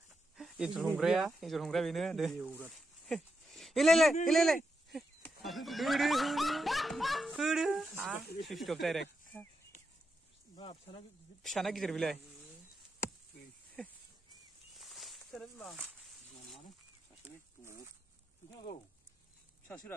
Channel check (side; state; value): both; normal; correlation 0.85